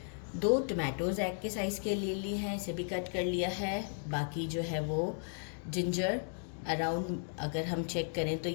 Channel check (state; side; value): silent; right; digital silence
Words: 2 टमाटोज़ एग के साइज़ के लिए लिए हैं, इसे भी कट कर लिया है। बाकी जो है वो जिंजर अराउंड, अगर हम चेक करें तो